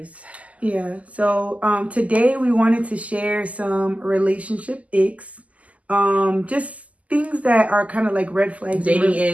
Yeah, so today we wanted to share some relationship icks. Just things that are kind of like red flags. Dating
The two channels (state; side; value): late; left; 0.071 ms